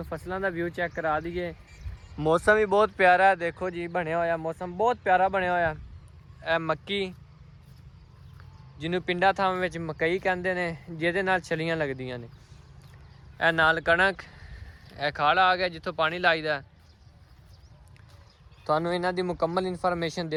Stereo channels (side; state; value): both; identical; correlation 1.00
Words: फसलों का व्यू चेक करा दीए। मौसम भी बहुत प्यारा है, देखो जी बनया होया मौसम बहुत प्यारा बनया होया। ए मक्की जिन्हों पिंडा थावां विच मकई कहंदे ने, जिहदे नाल छलियां लगदियां ने। ए नाल कणक, ए खाड़ा आ गया जिथों पानी लाईदा। तुहानू इन्हां दी मुकम्मल इन्फॉर्मेशन